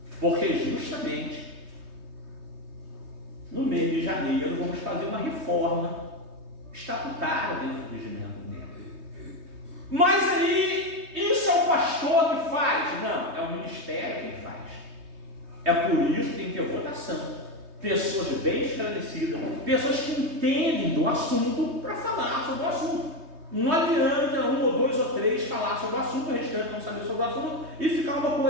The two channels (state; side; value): late; left; 3.2 ms